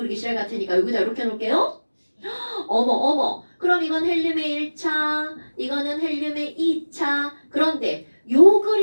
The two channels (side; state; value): both; inverted; correlation -1.00